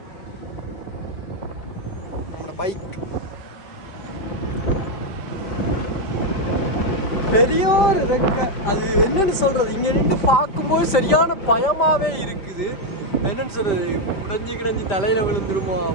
நம்மளோட பைக் பெரிய ஒரு ரெக்கை, அது என்னன்னு சொல்றது, இங்க நின்று பார்க்கும்போது சரியான பயமாவே இருக்குது. என்னன்னு சொல்றது, உடைஞ்சு தலையில விழுந்துருமோ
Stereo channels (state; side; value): late; right; 5.1 ms